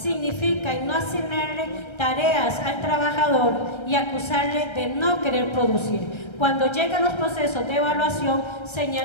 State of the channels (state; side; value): late; right; 1.3 ms